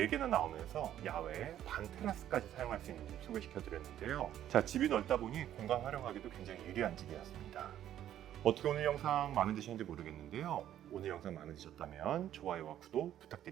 나오면서 야외 반 테라스까지 사용할 수 있는 집 소개시켜드렸는데요. 자, 집이 넓다 보니 공간 활용하기도 굉장히 유리한 집이었습니다. 어떻게 오늘 영상 마음에 드셨는지 모르겠는데요. 오늘 영상 마음에 드셨다면 좋아요와 구독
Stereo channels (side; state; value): left; quieter; 11.5 dB